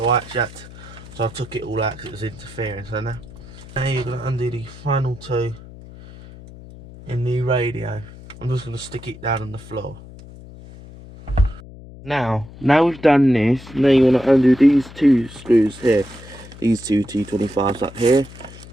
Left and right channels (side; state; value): left; noise; hum, 18 dB below the sound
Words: I took it all out because it was interfering. So now you're going to undo the final two in the radio. I'm just going to stick it down on the floor. Now we've done this, now you want to undo these two screws here, these two T25s up here.